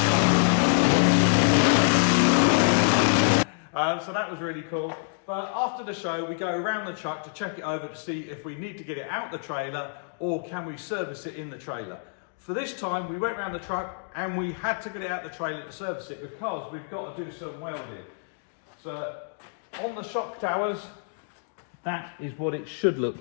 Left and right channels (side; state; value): right; silent; digital silence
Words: So that was really cool. But after the show, we go around the truck to check it over to see if we need to get it out the trailer or can we service it in the trailer. For this time, we went around the truck and we had to get it out the trailer to service it because we've got to do some welding. So on the shock towers, that is what it should look